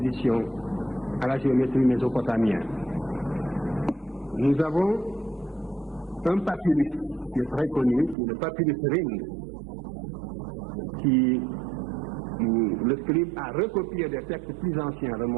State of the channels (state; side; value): drops out; left; at 8.2 s